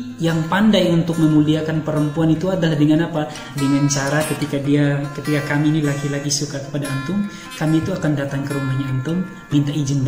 yang pandai untuk memuliakan perempuan itu adalah dengan apa? Dengan cara ketika kami ini laki-laki suka kepada antum, kami itu akan datang ke rumahnya antum, minta izin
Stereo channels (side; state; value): both; identical; correlation 1.00